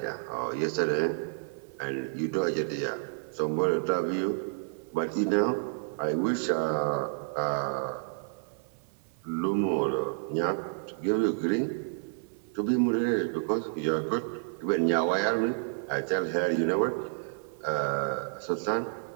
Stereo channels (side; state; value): left; silent; 55 dB below the other